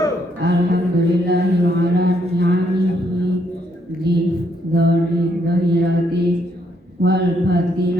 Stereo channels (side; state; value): both; normal; correlation 0.73